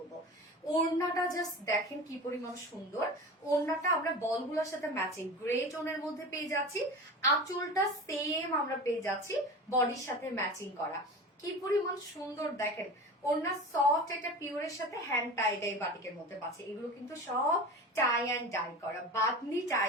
ওড়নাটা জাস্ট দেখেন কি পরিমাণ সুন্দর। ওড়নাটা আমরা বলগুলোর সাথে ম্যাচিং গ্রে টোনের মধ্যে পেয়ে যাচ্ছি। আঁচলটা সেম আমরা পেয়ে যাচ্ছি বডির সাথে ম্যাচিং করা। কি পরিমাণ সুন্দর দেখেন। ওড়না সফট একটা পিওরের সাথে হ্যান্ড টাই ডাই বাটিকের মধ্যে পাচ্ছে। এগুলো কিন্তু সব টাই অ্যান্ড ডাই করা, বাদনি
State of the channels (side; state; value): both; normal; correlation 0.32